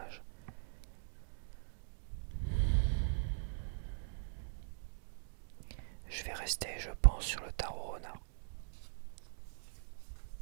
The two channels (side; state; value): left; silent; digital silence